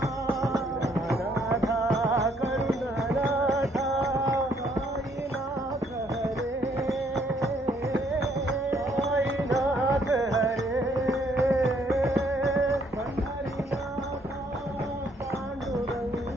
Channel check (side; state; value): both; normal; correlation 0.67